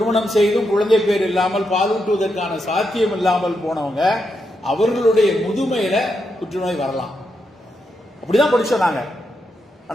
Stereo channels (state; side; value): normal; both; correlation 0.83